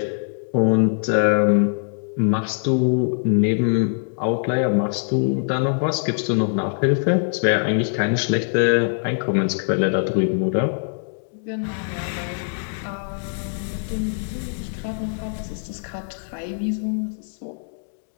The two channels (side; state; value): right; silent; digital silence